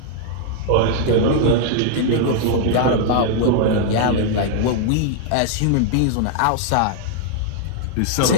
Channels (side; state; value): both; different; correlation -0.01